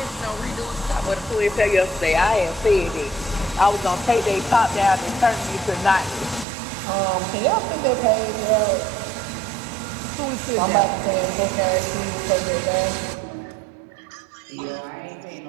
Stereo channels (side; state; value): left; drops out; at 6.5 s